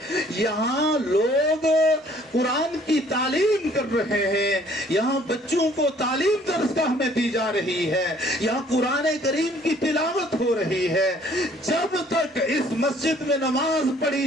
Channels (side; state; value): both; normal; correlation 0.58